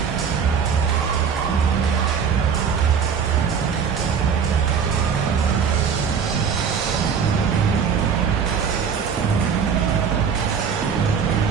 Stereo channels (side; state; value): left; quieter; 6.7 dB